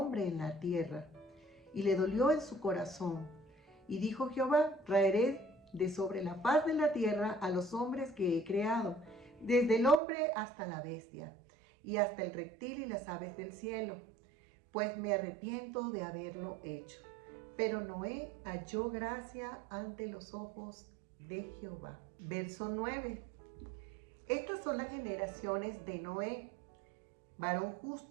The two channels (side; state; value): left; drops out; at 10.0 s